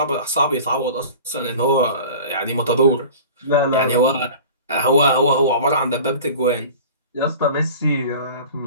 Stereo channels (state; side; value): inverted; both; correlation -0.39